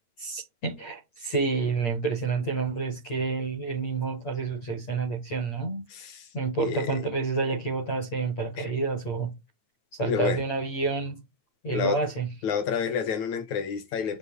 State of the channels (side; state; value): right; late; 8.6 ms